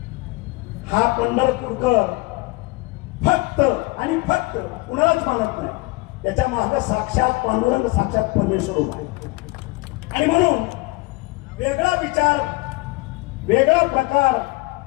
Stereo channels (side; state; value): right; quieter; 23.6 dB